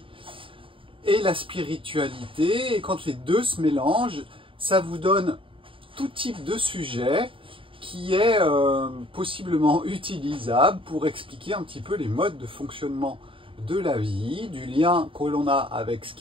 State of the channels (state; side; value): late; left; 0.25 ms